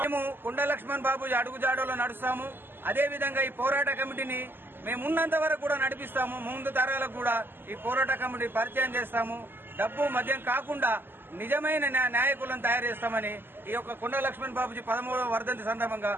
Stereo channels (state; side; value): late; left; 0.098 ms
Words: మేము కుండ లక్ష్మణ్ బాబూజీ అడుగుజాడలో నడుస్తాము. అదే విధంగా ఈ పోరాట కమిటీని మేము ఉన్నంత వరకు కూడా నడిపిస్తాము. ముందు తరాలకు కూడా ఈ పోరాట కమిటీ పరిచయం చేస్తాము. డబ్బు మద్యం కాకుండా నిజమైన నాయకులను తయారు చేస్తామని ఈ యొక్క కుండ లక్ష్మణ్ బాబూజీ 13వ వర్ధంతి సందర్భంగా